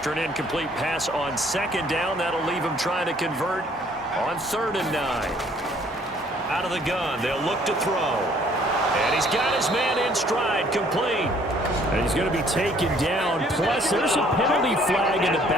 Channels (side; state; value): both; normal; correlation 0.61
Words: an incomplete pass on 2nd down, that'll leave him trying to convert on 3rd and 9. Out of the gun, they'll look to throw. And he's got his man in stride, complete. And he's going to be taken down. Plus, there's a penalty flag in the